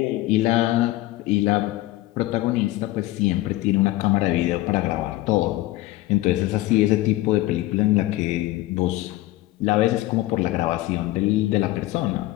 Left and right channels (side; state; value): right; quieter; 17.3 dB